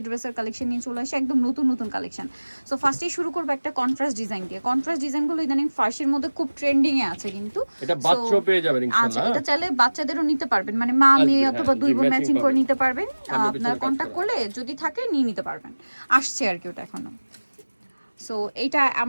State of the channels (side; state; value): both; inverted; correlation -1.00